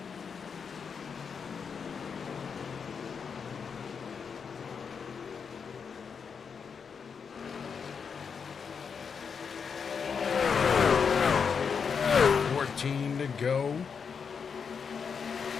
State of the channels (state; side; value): quieter; right; 6.2 dB